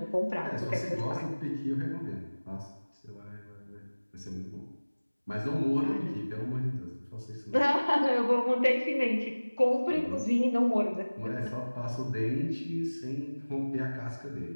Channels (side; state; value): both; inverted; correlation -1.00